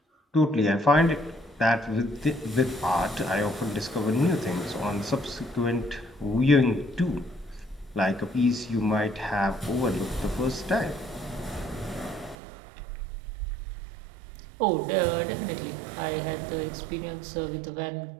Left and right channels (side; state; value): left; drops out; at 12.4 s